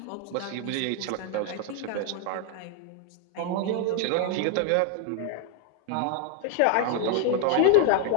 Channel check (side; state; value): both; different; correlation 0.00